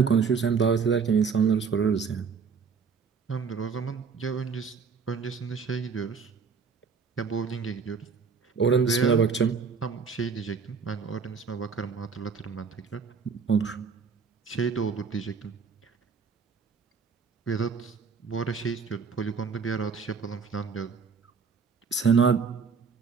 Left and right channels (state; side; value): quieter; left; 5.7 dB